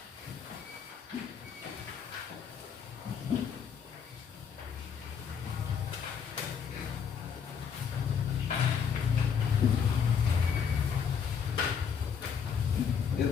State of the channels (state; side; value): quieter; right; 7.0 dB